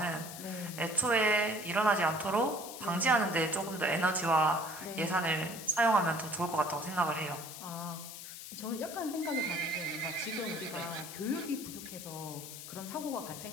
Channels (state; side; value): noise; left; hiss, 11 dB below the sound